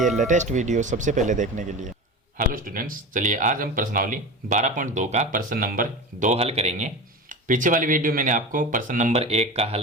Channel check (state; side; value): normal; both; correlation 0.28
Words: लेटेस्ट वीडियो सबसे पहले देखने के लिए। हेलो स्टूडेंट्स, चलिए आज हम प्रश्नावली 12.2 का प्रश्न नंबर 2 हल करेंगे। पीछे वाली वीडियो मैंने आपको प्रश्न नंबर 1 का